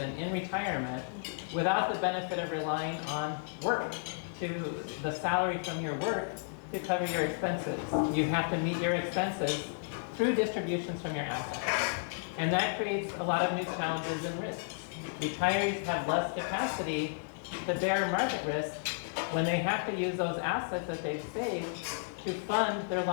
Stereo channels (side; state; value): right; silent; digital silence